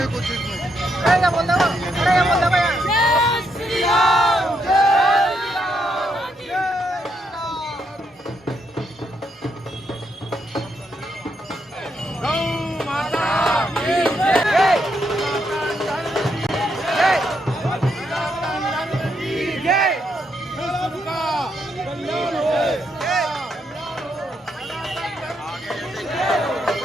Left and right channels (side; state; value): both; normal; correlation 0.78